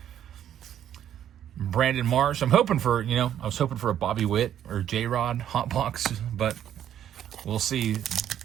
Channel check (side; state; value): left; quieter; 10.4 dB